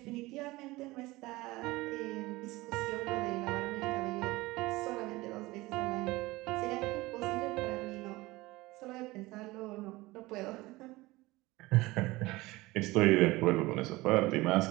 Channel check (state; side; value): quieter; left; 20.3 dB